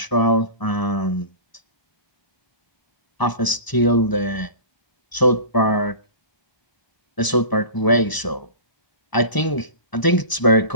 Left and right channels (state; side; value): late; right; 1.0 ms